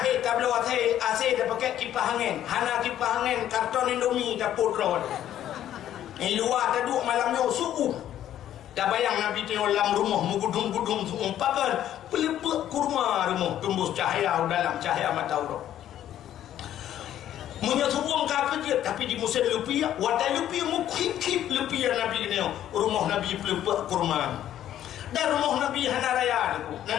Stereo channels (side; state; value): right; quieter; 11.6 dB